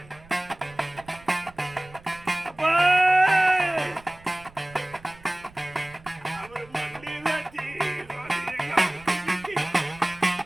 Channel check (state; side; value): noise; right; rumble, 23 dB below the sound